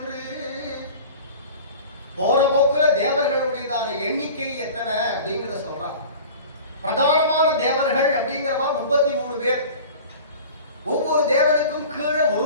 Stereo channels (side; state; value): both; inverted; correlation -0.40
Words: போற போக்குல தேவர்களுடையதான எண்ணிக்கை எத்தனை அப்படிங்கிறத சொல்றான். பிரதானமான தேவர்கள் அப்படிங்கிறவா 33 பேர். ஒவ்வொரு தேவனுக்கும் கீழே